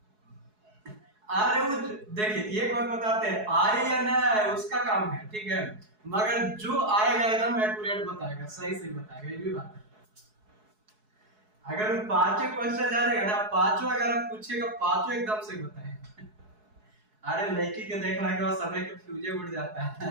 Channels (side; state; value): left; late; 4.7 ms